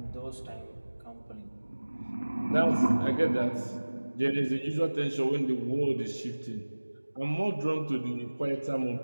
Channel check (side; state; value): both; inverted; correlation -1.00